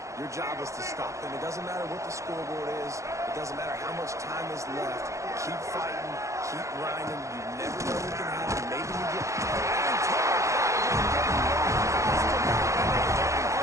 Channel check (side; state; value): left; late; 0.15 ms